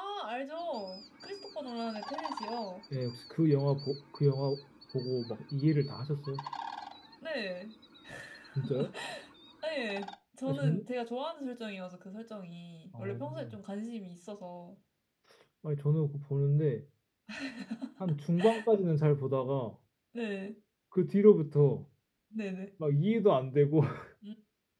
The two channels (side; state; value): both; identical; correlation 1.00